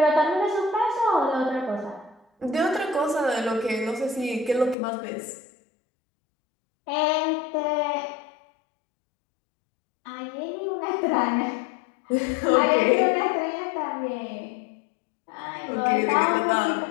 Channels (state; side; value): drops out; right; at 4.8 s